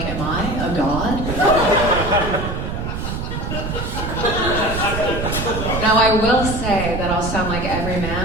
am I a god? Now I will say that I'll sound like every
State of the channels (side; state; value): right; noise; rumble, 4 dB below the sound